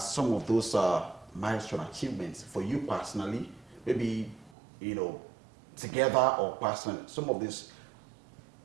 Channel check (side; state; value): left; drops out; at 4.5 s